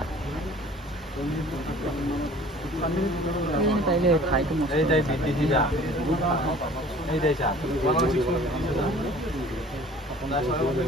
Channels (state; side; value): normal; both; correlation 0.49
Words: তাইলে খাই তো এই যাই বিটিসি যা এই যাই চা